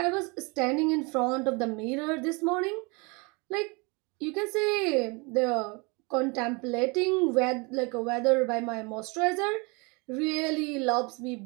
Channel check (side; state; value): left; quieter; 29.1 dB